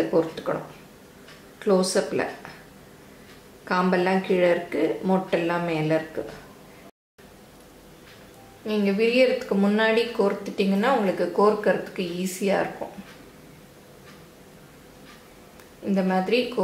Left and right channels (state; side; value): identical; both; correlation 1.00